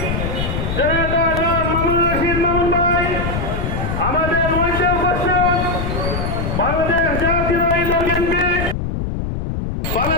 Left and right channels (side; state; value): left; noise; rumble, 3 dB below the sound